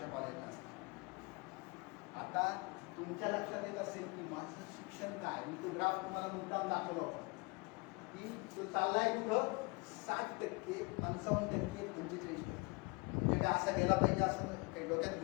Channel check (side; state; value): right; quieter; 27.8 dB